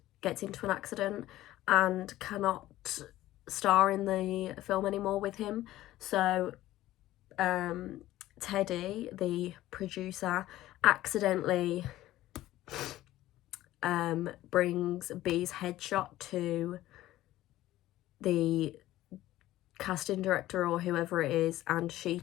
gets into an accident and cannot star in the film anymore with him. So Teddy, the producer, accidentally brings B's headshot to the casting director or whoever it is, and she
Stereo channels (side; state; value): right; quieter; 15.3 dB